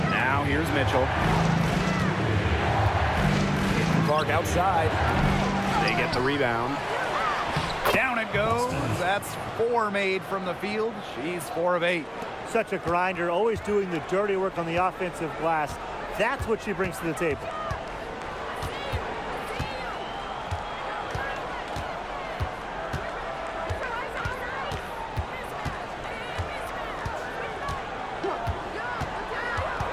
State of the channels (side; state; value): both; identical; correlation 1.00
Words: Now here's Mitchell. Clark outside. They get the rebound. Down it goes. That's 4 made from the field. She's 4 of 8. Such a grinder, always doing the dirty work on the offensive glass. That's what she brings to the table.